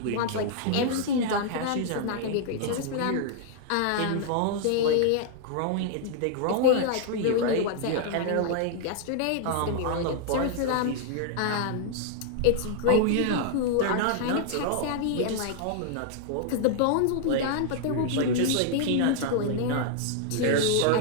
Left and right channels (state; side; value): different; both; correlation 0.00